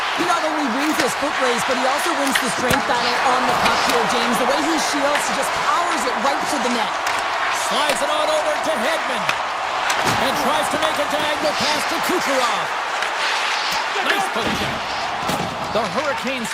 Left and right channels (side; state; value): both; identical; correlation 1.00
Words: He not only wins his foot race, but he also wins the strength battle on the puck here, James. The way he shields, he just powers it right to the net. Slides it on over to Hedman. And tries to make a diagonal pass to Kucherov. Nice push check. The Hurricanes